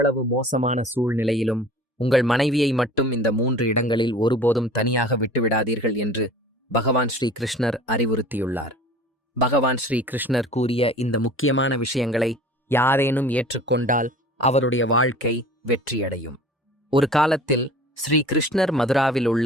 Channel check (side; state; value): both; normal; correlation 0.44